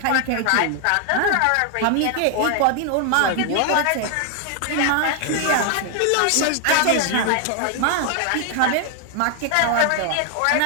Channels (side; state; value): both; different; correlation 0.00